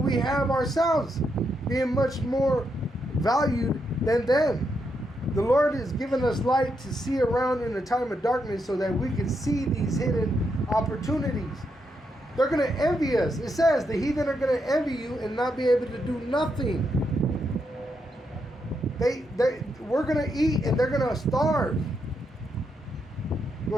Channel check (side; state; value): both; normal; correlation 0.81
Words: we have ourselves, being much more valued than them. The Lord has given us light to see around in a time of darkness so that we can see these hidden opportunities. They're going to envy us. It says the heathen are going to envy you and not be able to do nothing. We're going to eat and they're going to starve. Go